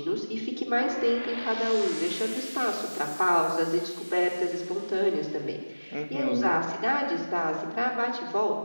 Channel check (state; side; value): inverted; both; correlation -1.00